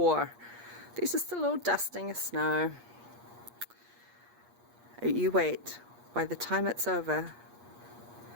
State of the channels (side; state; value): left; late; 8.4 ms